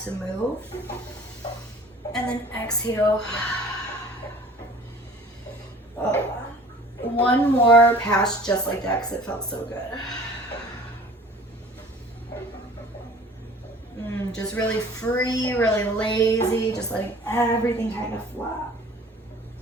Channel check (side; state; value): both; normal; correlation 0.48